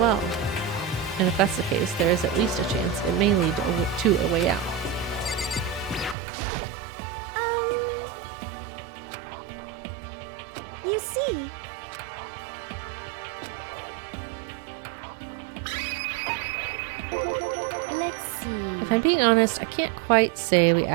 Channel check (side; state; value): left; drops out; at 6.2 s